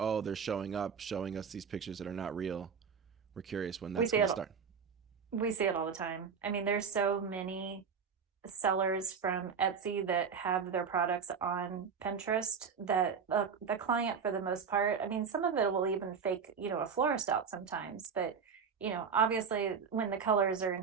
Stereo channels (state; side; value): quieter; left; 6.3 dB